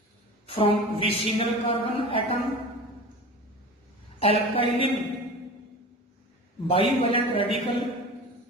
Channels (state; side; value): normal; both; correlation 0.34